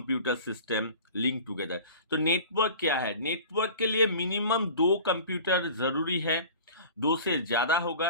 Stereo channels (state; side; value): inverted; both; correlation -0.41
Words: system linked together. तो नेटवर्क क्या है? नेटवर्क के लिए मिनिमम 2 कंप्यूटर जरूरी है। 2 से ज्यादा